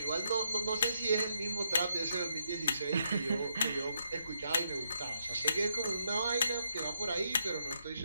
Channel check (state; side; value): inverted; both; correlation -0.78